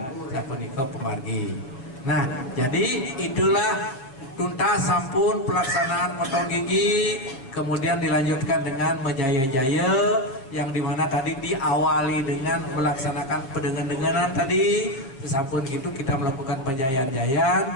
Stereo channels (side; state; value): right; late; 7.4 ms